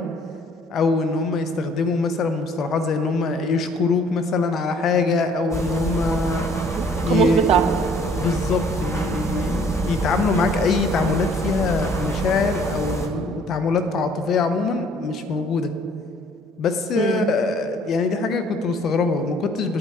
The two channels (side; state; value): both; normal; correlation 0.58